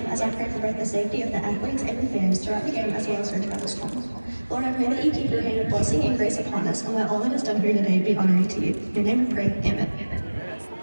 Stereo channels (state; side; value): inverted; both; correlation -1.00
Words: as I pray for both the safety of the athletes and the fans throughout the game as well as our travel school. Lord, I pray that you keep your hand of blessing and grace upon us and let all that is done here today be honoring to you. In your name we pray, amen.